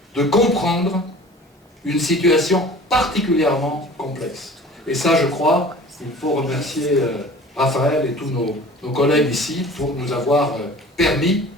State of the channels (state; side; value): normal; both; correlation 0.44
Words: de comprendre une situation particulièrement complexe. Et ça, je crois, il faut remercier Raphaël et tous nos collègues ici pour nous avoir permis